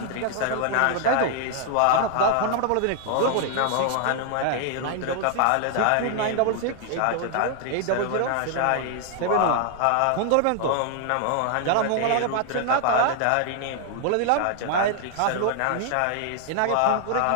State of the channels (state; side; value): different; both; correlation 0.00